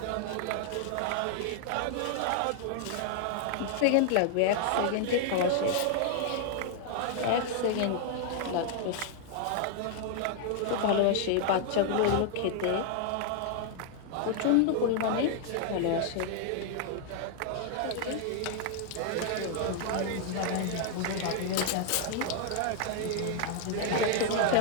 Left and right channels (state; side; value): different; both; correlation 0.00